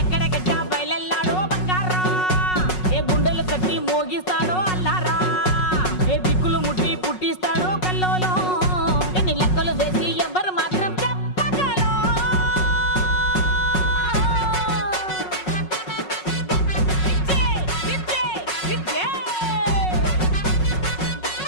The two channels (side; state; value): right; late; 5.4 ms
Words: బయలెల్లాడో బంగారా ఏ గుండెలు కట్టి మోగిస్తాడో అల్లారా ఏ దిక్కులు ముట్టి పుట్టిస్తాడో కల్లోలో ఎన్ని లెక్కలు వేసి ఎవ్వరు